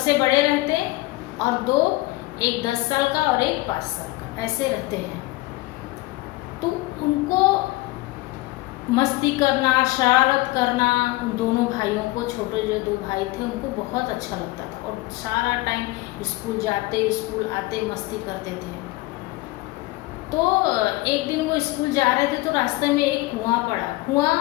बड़े रहते और 2, एक 10 साल का और एक 5 साल का, ऐसे रहते हैं। तो उनको मस्ती करना, शरारत करना, उन दोनों भाइयों को, छोटे जो 2 भाई थे उनको बहुत अच्छा लगता था और सारा टाइम स्कूल जाते स्कूल आते मस्ती करते थे। तो एक दिन वो स्कूल जा रहे थे तो रास्ते में एक कुआं पड़ा, कुआं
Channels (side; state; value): right; quieter; 20.2 dB